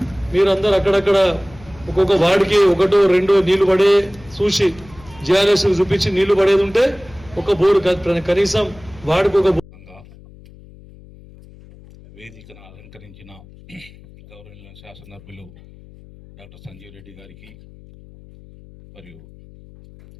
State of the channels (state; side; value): noise; left; hum, 22 dB below the sound